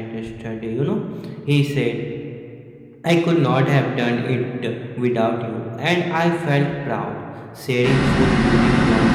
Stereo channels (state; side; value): identical; both; correlation 1.00